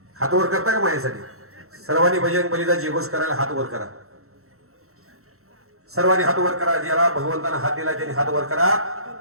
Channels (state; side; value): late; left; 0.63 ms